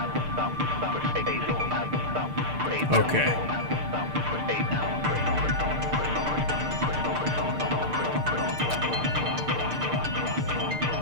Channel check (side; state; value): left; late; 6.6 ms